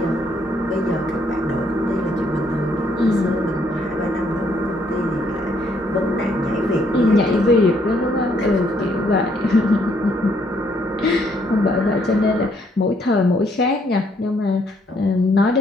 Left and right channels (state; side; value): normal; both; correlation 0.69